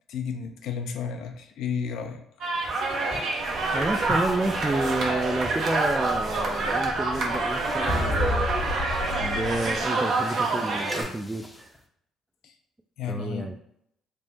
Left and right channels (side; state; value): both; normal; correlation 0.73